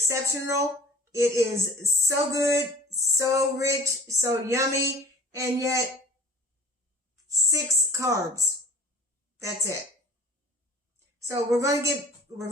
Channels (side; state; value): both; normal; correlation 0.46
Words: It is so good, so rich, so yummy, and yet 6 carbs. That's it. So we're going to